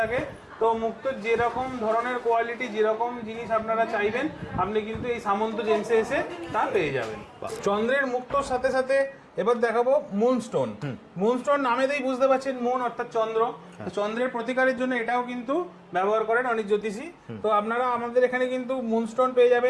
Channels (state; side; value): identical; both; correlation 1.00